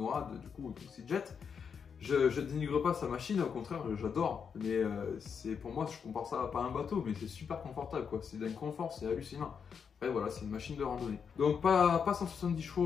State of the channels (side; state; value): right; quieter; 6.6 dB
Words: du coup Seajet. Je dénigre pas sa machine, au contraire, j'adore. Mais c'est pour moi, je compare ça à pas un bateau, mais c'est super confortable quoi. C'est d'un confort, c'est hallucinant. Après voilà, c'est une machine de randonnée. Donc pas 170